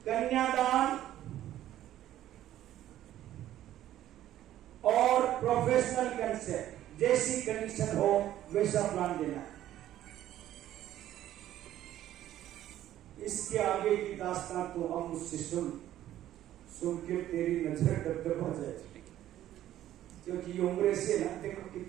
कन्यादान और प्रोफेशनल कंसेप्ट, जैसी कंडीशन हो वैसा प्लान देना। इसके आगे की दास्तान तो हम मुझसे सुन के तेरी नजर दबदबा जाए। क्योंकि ये उम्र से ना, देखो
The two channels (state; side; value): quieter; left; 12.8 dB